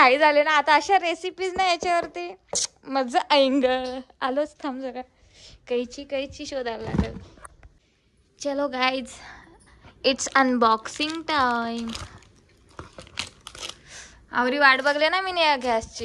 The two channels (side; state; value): both; identical; correlation 1.00